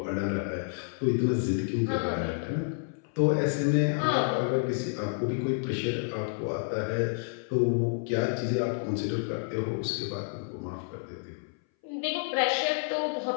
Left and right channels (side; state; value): right; silent; 58 dB below the other